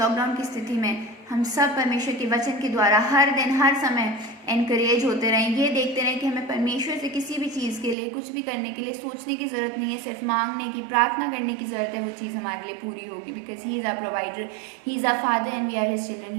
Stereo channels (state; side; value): drops out; left; at 8.0 s